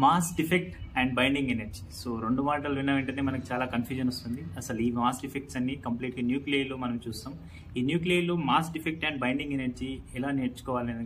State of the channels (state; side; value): identical; both; correlation 1.00